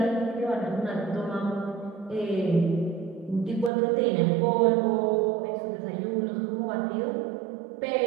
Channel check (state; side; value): drops out; left; at 3.7 s